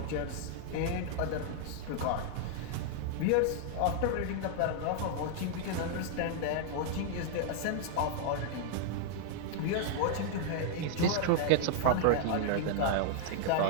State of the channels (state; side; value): different; both; correlation -0.01